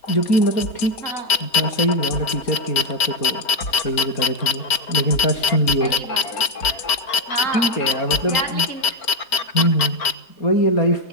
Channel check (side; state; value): right; late; 4.4 ms